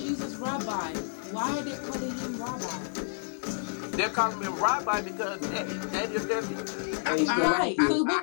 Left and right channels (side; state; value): right; silent; digital silence